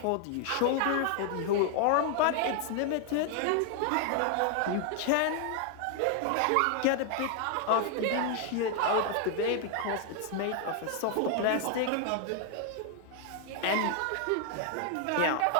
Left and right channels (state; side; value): different; both; correlation 0.00